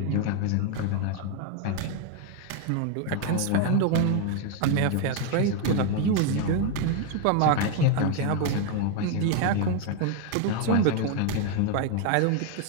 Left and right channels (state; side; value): different; both; correlation 0.01